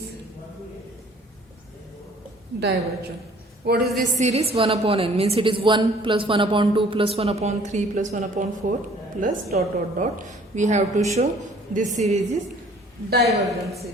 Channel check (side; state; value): both; normal; correlation 0.55